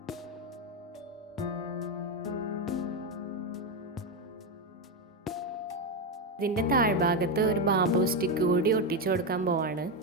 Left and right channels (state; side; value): normal; both; correlation 0.09